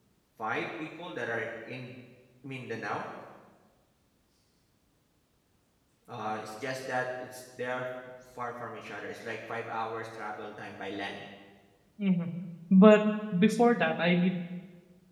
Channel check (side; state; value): both; identical; correlation 1.00